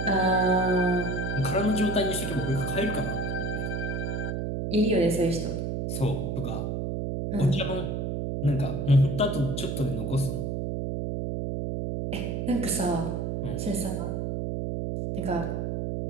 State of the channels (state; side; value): noise; right; hum, 2 dB below the sound